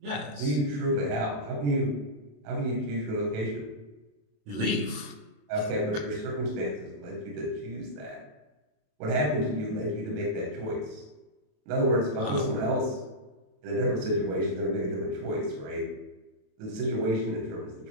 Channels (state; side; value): late; left; 27 ms